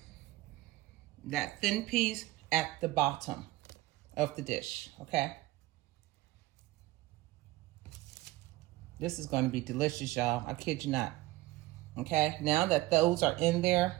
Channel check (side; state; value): left; quieter; 18.0 dB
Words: that thin piece at the bottom of the dish, okay? This is going to be delicious, y'all. I kid you not. Okay, now that those are in there